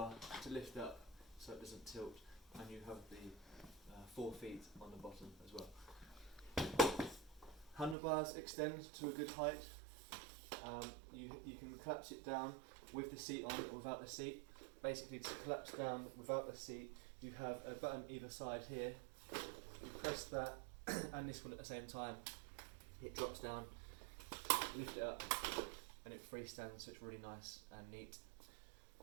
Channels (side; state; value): left; drops out; at 8.0 s